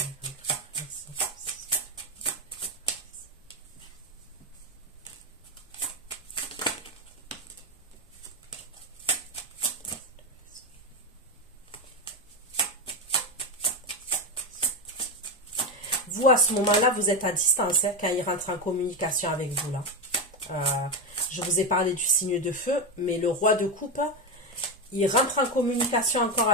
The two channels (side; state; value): both; normal; correlation 0.13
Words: Vous, à ce moment-là, vous êtes à distance hein, quand il rentre en communication avec vous. Là. Je vous ai parlé du signe de feu, mais le roi de coupe, il rentre en communication encore